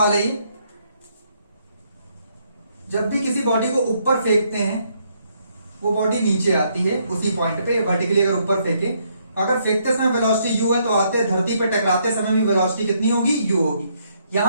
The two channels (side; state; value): both; inverted; correlation -0.72